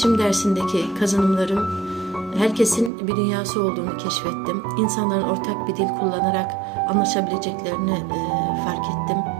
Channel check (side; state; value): left; drops out; at 2.9 s